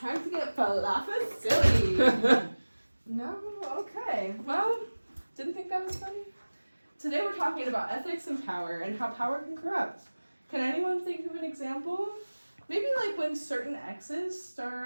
to get falafel silly. No? Okay. Well, didn't think that was funny? Today we're talking about ethics and power and how power can corrupt. Can anyone think of an example? Maybe like when certain exes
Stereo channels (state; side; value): inverted; both; correlation -1.00